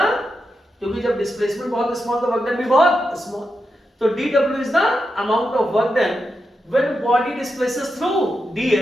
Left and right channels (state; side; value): normal; both; correlation 0.87